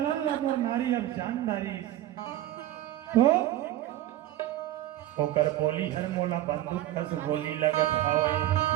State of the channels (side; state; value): left; quieter; 14.0 dB